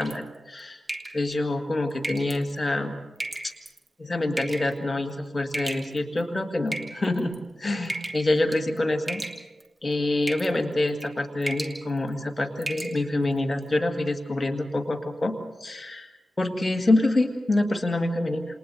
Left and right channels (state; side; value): normal; both; correlation 0.94